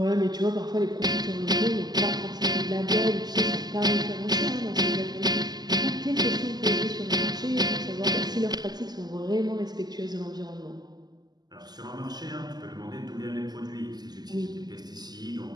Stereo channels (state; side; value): late; left; 0.19 ms